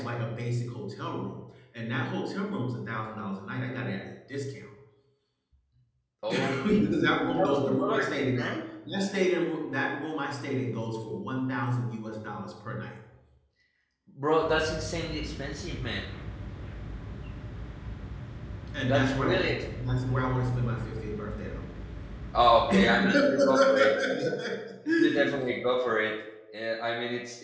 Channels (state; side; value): identical; both; correlation 1.00